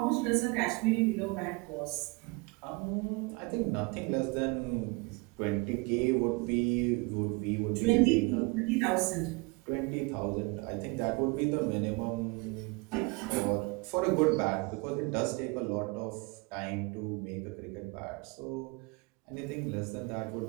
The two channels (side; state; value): left; quieter; 27.6 dB